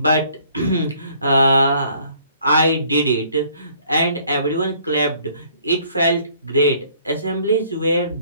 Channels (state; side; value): inverted; both; correlation -0.60